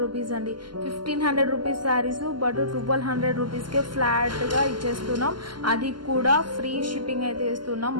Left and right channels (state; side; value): late; left; 0.71 ms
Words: రూపీస్ అండి. 1500 rupees saris but 1200 rupees K flat గా ఇచ్చేస్తున్నాం. అది కూడా ఫ్రీ షిప్పింగ్ అయితే ఇస్తున్నాం.